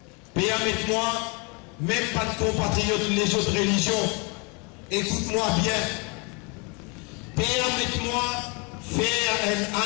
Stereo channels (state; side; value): quieter; right; 31.6 dB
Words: permettez-moi, même pas de compatriotes les autres religions, écoute-moi bien. Permettez-moi faire une